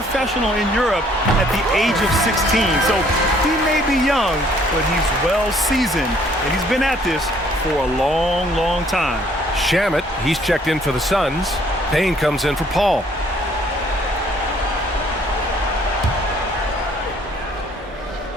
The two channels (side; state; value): both; normal; correlation 0.61